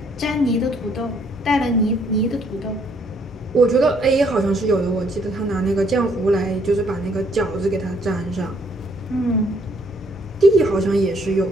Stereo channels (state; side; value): normal; both; correlation 0.67